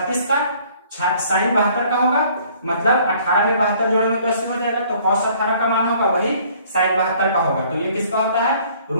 का, साइन 72 का होगा, मतलब 18 में 72 जोड़ेंगे तो 80 हो जाएगा, तो cos 18 का मान होगा वही साइन 72 का होगा, तो ये किसका होता है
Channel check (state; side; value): inverted; both; correlation -0.58